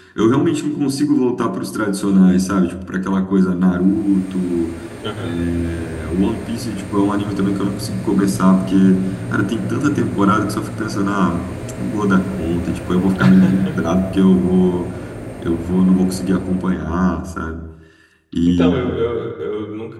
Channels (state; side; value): identical; both; correlation 1.00